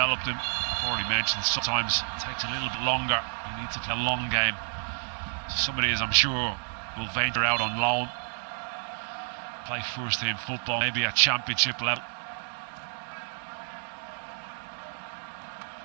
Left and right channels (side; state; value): left; silent; 58 dB below the other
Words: them. I've already mentioned sometimes it takes a little bit longer. You need to play a long game. So somebody, as I'm sure, will venture out on loan, play first team football, maybe at championship level.